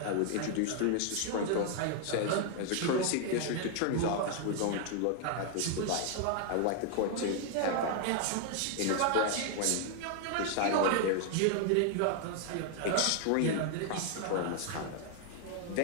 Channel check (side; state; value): both; different; correlation 0.00